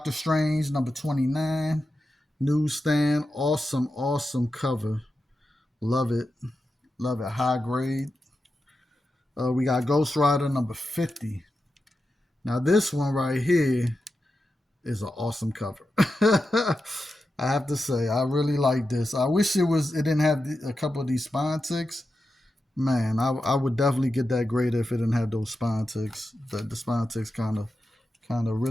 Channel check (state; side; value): normal; both; correlation 0.90